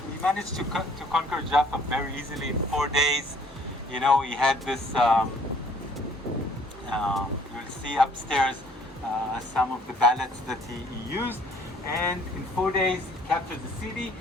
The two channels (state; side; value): normal; both; correlation 0.58